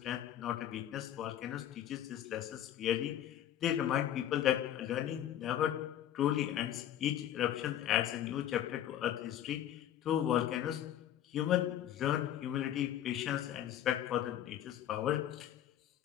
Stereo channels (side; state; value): right; quieter; 11.2 dB